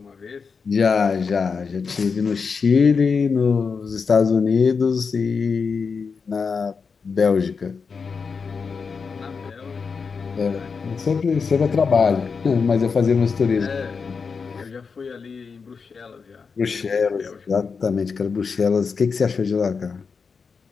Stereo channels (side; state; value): right; quieter; 5.3 dB